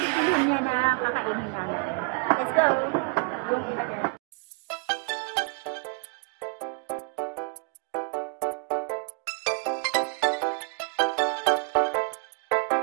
niya na kakainin namin. Let's go!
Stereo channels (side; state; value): left; quieter; 33.7 dB